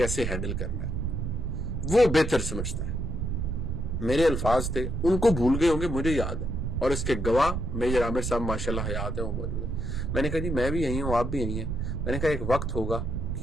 ہینڈل کرنا ہے، وہ بہتر سمجھتا ہے. میرے الفاظ تھے، ان کو بھول گئے ہوں گے، مجھے یاد ہے، اور اس کے گواہ میجر عامر صاحب ماشاءاللہ حیات ہیں، وہ موجود ہیں. میں نے کہا جی میں بھی یہی ہوں، آپ بھی یہی ہیں. میں نے کہا ایک وقت ہوگا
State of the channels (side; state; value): right; noise; rumble, 3 dB below the sound